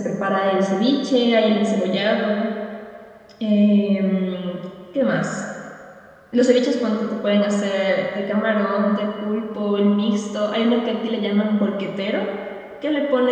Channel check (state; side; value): identical; both; correlation 1.00